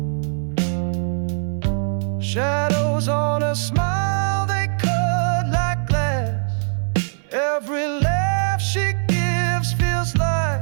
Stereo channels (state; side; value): silent; left; 65 dB below the other